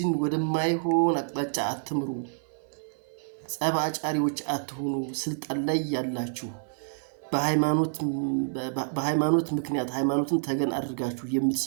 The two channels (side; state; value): left; silent; 56 dB below the other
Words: ወደማይሆን አቅጣጫ አትምሩ። ጸብ አጫሪዎች አትሁኑ። ስልጣን ላይ ያላችሁ በሃይማኖት ምክንያት ሃይማኖትን ተገን አድርጋችሁ